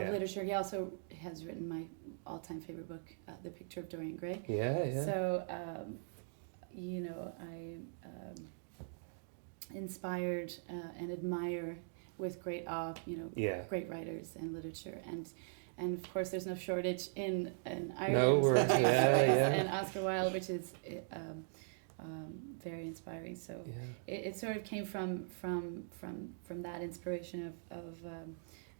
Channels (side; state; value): left; silent; digital silence